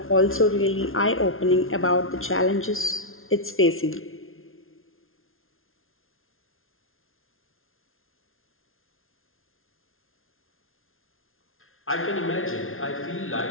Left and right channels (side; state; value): right; late; 0.61 ms